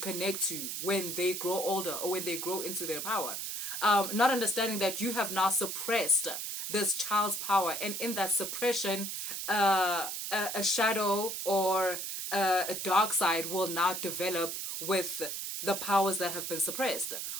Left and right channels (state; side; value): noise; right; hiss, 4 dB below the sound